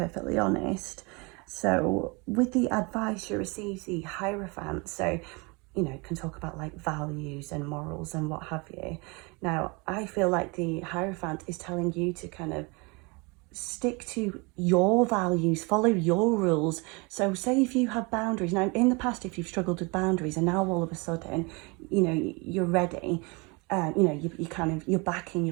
honest. So with the advice, you receive the Hierophant. So you know, can talk about like values and morals and what have you. Now, I feel like the Hierophant is telling you to kind of stick to your values, follow your rules. So say if you have boundaries, now in the past, if you've struggled with boundaries and now all of a sudden, you know, you're ready, you know, you kind of, you're back in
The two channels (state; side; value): quieter; left; 28.6 dB